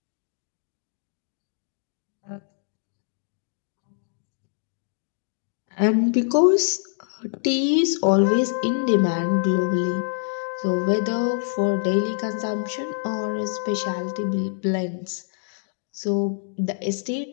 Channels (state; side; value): silent; right; digital silence